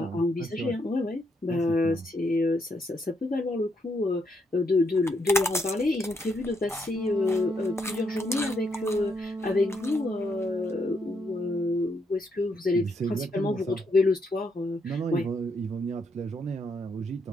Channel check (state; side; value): normal; both; correlation 0.77